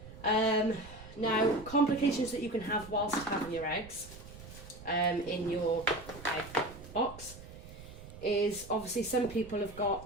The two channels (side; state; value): right; noise; rumble, 16 dB below the sound